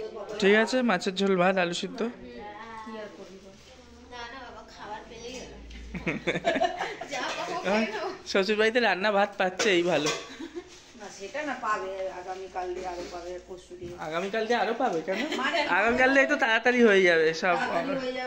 ঠিক আছে, মাছের ঝোল ভাত আলু সিদ্ধ। না না বাবা, খাবার পেলেই হলো। যা পাবো খেয়ে নেবো। শ্বশুর বাড়িতে রান্না ভাত পাচ্ছে, এই ভালো। না সেটা না, পাবে আগামীকাল দিয়ে আরো পাবে, পরশু দিয়ে। আগামীকাল দিয়ে আরো পাবে কেন? মানে আগামীকাল দিয়ে তো তাড়াতাড়ি হয়ে যাবে, সব তাড়াতাড়ি হয়ে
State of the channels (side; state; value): both; identical; correlation 1.00